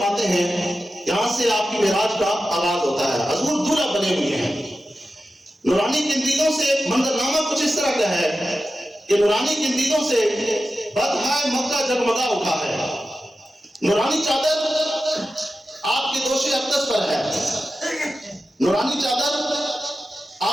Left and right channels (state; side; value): normal; both; correlation 0.93